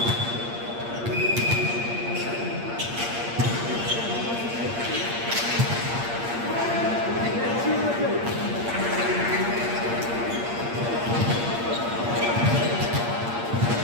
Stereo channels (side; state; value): left; late; 8.6 ms